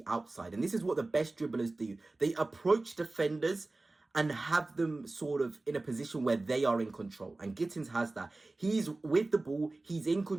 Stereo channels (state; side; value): quieter; left; 3.1 dB